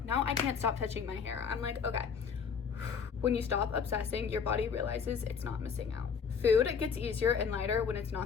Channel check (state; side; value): quieter; right; 6.4 dB